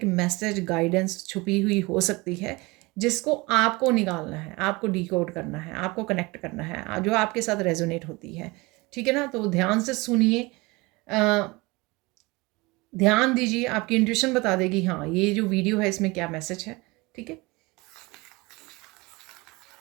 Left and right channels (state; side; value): quieter; left; 24.0 dB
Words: मैसेज, गाइडेंस छुपी हुई हो सकती है जिसको आपको निकालना है, आपको डिकोड करना है, आपको कनेक्ट करना है, जो आपके साथ रेजोनेट होती है, ठीक है ना। तो ध्यान से सुनिए, ध्यान दीजिए, आपकी इंट्यूशन बता देगी हाँ ये जो वीडियो है इसमें क्या मैसेज है, ठीक है।